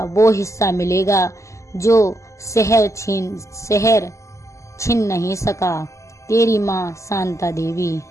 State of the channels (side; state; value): right; late; 0.15 ms